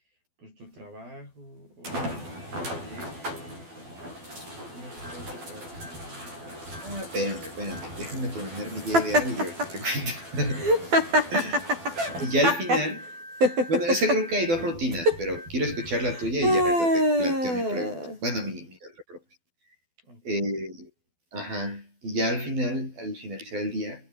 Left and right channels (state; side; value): late; left; 12 ms